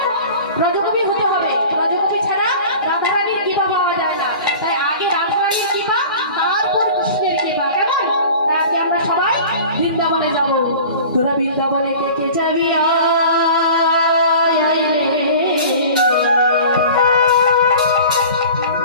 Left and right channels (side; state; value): both; inverted; correlation -0.40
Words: ব্রজকবি হতে হবে, ব্রজকবি ছাড়া রাধারানীর কৃপা পাওয়া যায় না। তাই আগে রাধারানীর কৃপা, তারপর কৃষ্ণের কৃপা। কেমন? তাই আজকে আমরা সবাই বৃন্দাবনে যাবো। তোরা বৃন্দাবনে কে কে যাবি? আয় রে